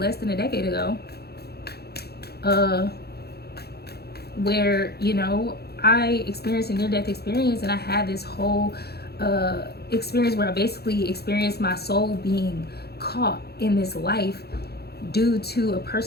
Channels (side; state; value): right; late; 0.47 ms